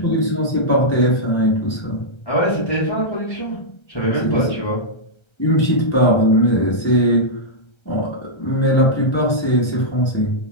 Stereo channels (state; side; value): late; right; 1.3 ms